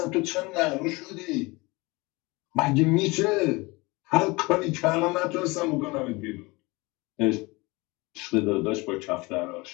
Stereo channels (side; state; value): right; quieter; 24.3 dB